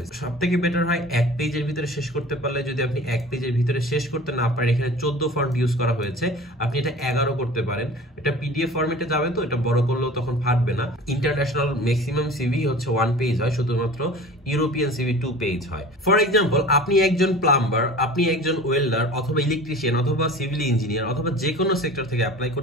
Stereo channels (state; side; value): normal; both; correlation 0.40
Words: সবথেকে বেটার হয় 1 পেজের ভিতরে শেষ করতে পারলে। যদি আপনি 1 পেজের ভিতরে শেষ করতে না পারেন, এখানে 14 ফন্ট ইউজ করা হয়েছে, আপনি এটা 11 করতে পারেন। এটা পিডিএফ ফরম্যাটে যাবে, তো এটা বড় করলেও তখন ফাটবে না। ইন্টারন্যাশনাল ম্যাক্সিমাম সিভি হচ্ছে 1 পেজ হয়, শুধুমাত্র ইউরোপিয়ান সিভি 2 পেজ হয়। ফর এক্সাম্পল, আপনি একজন প্লাম্বার, আপনি একজন ওয়েল্ডার অথবা ইলেকট্রিশিয়ান অথবা সিভিল ইঞ্জিনিয়ার অথবা যে কোনো সেক্টর থেকে অ্যাপ্লাই